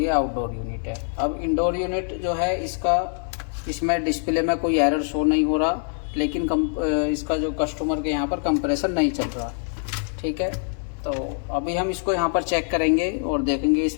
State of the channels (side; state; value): right; silent; digital silence